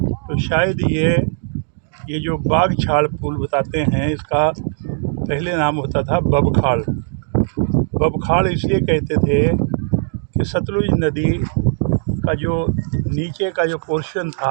शायद ये जो बागछाड़ पुल बताते हैं, इसका पहले नाम होता था बबखाड़। बबखाड़ इसलिए कहते थे कि सतलुज नदी का जो नीचे का जो पोर्शन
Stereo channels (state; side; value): silent; left; digital silence